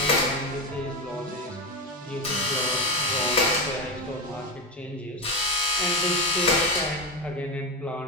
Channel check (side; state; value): both; normal; correlation 0.15